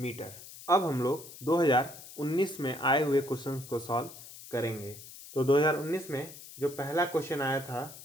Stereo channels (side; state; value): left; noise; hiss, 16 dB below the sound